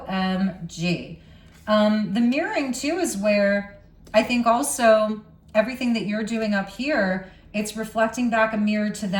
The mirroring too is where I think also everything that you're doing up here, it's reflecting back a mirror to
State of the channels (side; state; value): both; identical; correlation 1.00